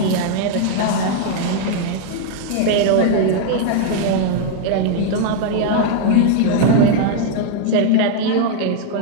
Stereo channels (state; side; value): different; both; correlation -0.01